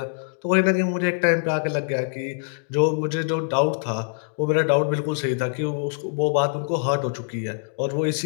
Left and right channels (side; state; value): right; silent; digital silence